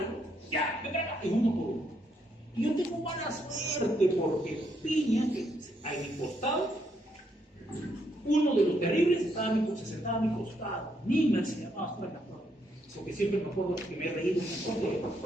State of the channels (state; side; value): normal; both; correlation 0.75